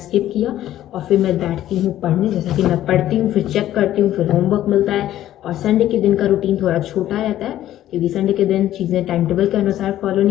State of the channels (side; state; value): right; quieter; 13.0 dB